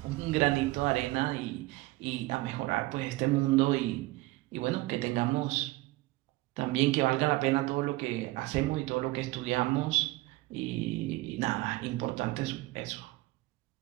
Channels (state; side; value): quieter; left; 19.8 dB